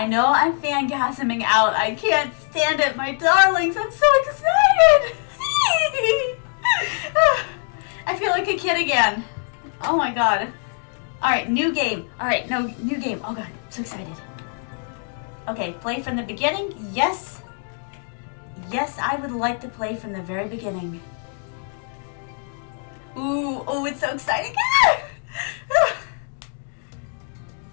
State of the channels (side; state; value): right; silent; 55 dB below the other